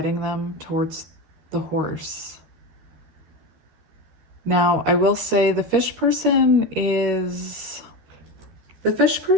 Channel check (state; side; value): late; left; 13 ms